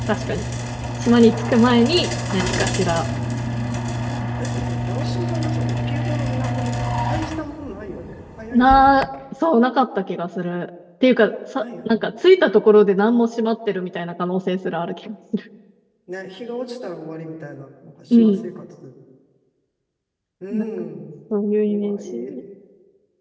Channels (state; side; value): identical; both; correlation 1.00